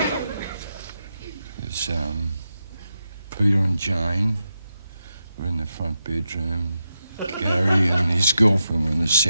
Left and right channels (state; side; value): inverted; both; correlation -0.87